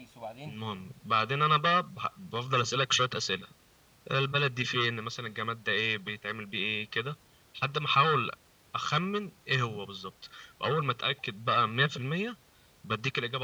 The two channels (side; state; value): both; identical; correlation 1.00